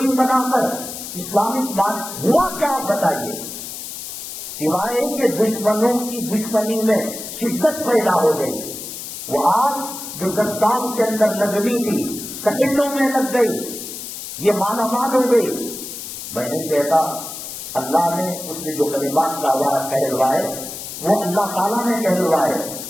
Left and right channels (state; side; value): noise; left; hiss, 9 dB below the sound